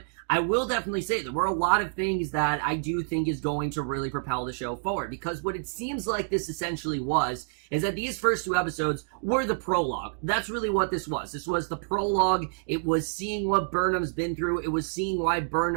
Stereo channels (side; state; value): left; silent; digital silence